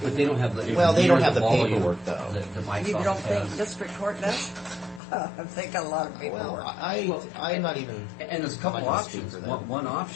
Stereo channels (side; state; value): right; drops out; at 5.0 s